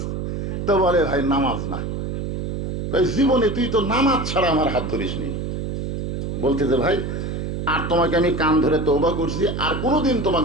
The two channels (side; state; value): right; noise; hum, 3 dB below the sound